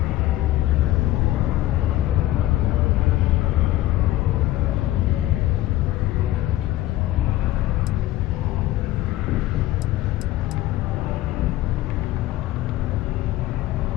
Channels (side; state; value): right; quieter; 15.4 dB